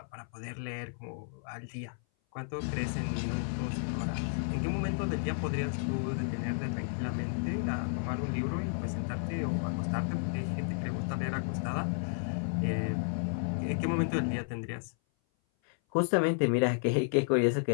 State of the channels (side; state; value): right; silent; 56 dB below the other